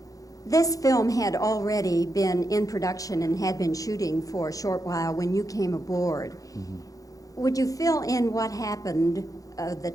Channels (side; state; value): right; late; 0.17 ms